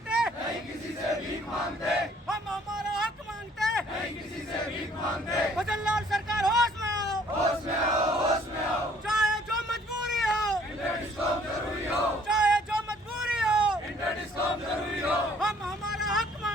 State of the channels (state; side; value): normal; both; correlation 0.60